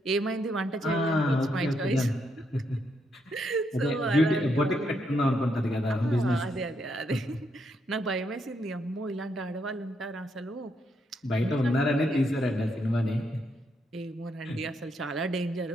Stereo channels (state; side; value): normal; both; correlation 0.78